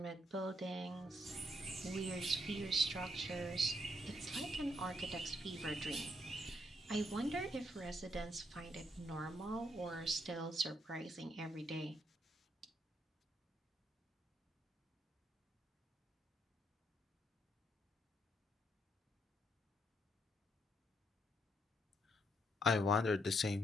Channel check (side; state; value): both; normal; correlation 0.74